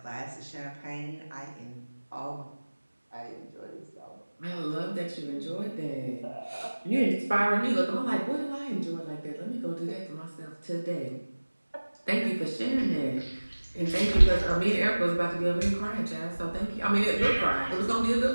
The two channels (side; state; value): both; inverted; correlation -1.00